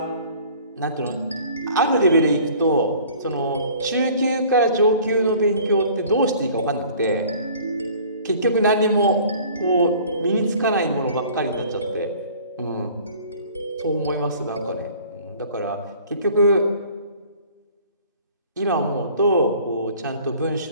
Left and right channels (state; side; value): inverted; both; correlation -0.50